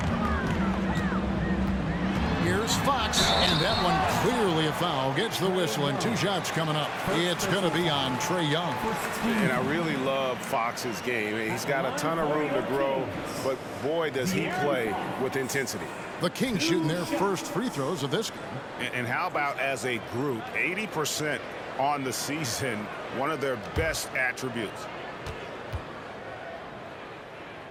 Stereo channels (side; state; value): both; identical; correlation 1.00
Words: Here's Fox, and that one clearly a foul. Gets the whistle, and 2 shots coming up. It's going to be on Trae Young. And I really love Fox's game. He's got a ton of room to grow, but boy, does he play with intensity. The Kings shooting their first free throws of this game. And how about as a group, 80% on the season, one of their best attributes.